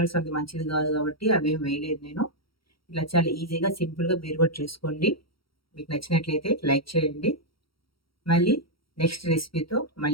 అంత మంచిది కాదు కాబట్టి అవేం వేయలేదు నేను. ఇలా చాలా ఈజీగా సింపుల్గా మీరు కూడా చేసుకోండి. మీకు నచ్చినట్లయితే లైక్ చేయండి. మళ్ళీ నెక్స్ట్ రెసిపీతో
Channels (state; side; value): late; right; 0.75 ms